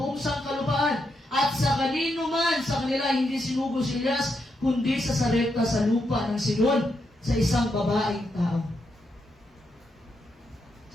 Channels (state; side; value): normal; both; correlation 0.82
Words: buong sangkalupaan at sa kanino man sa kanila hindi sinugo si Elias kundi sa Sarepta sa lupa ng Sidon sa isang babaeng tao.